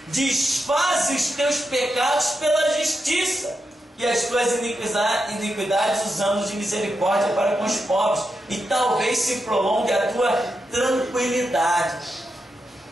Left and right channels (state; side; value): normal; both; correlation 0.86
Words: Desfaze os teus pecados pela justiça e as tuas iniquidades os anos de misericórdia para com os pobres, e talvez se prolongue a tua tranquilidade.